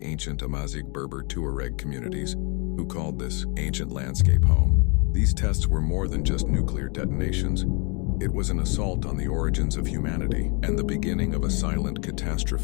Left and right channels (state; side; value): quieter; right; 33.2 dB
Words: ancient Amazigh Berber Tuareg communities, who called this ancient landscape home. These tests were more than just nuclear detonations. It was an assault on the origins of humanity and the beginning of a silent